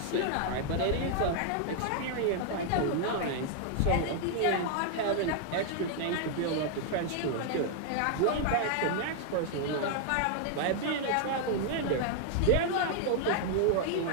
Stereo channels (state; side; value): different; both; correlation 0.00